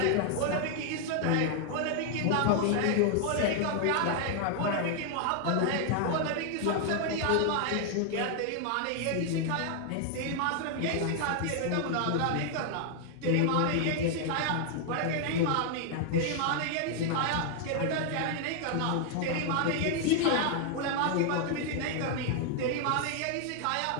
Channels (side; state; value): both; different; correlation 0.00